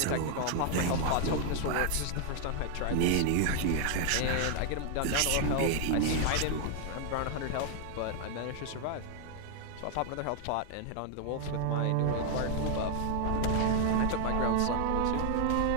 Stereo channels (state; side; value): different; both; correlation 0.00